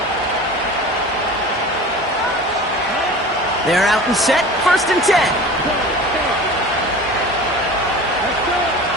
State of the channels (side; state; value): both; normal; correlation 0.37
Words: They're out and set, 1st and 10.